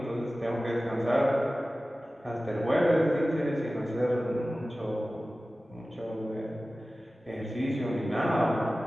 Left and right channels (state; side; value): normal; both; correlation 0.96